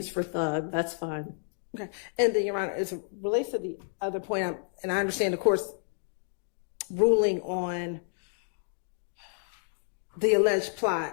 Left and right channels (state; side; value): silent; right; digital silence